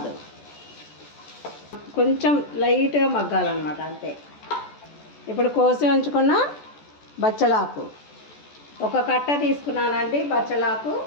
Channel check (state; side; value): late; right; 14 ms